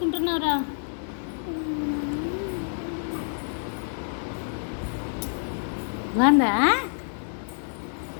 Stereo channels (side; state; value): right; silent; digital silence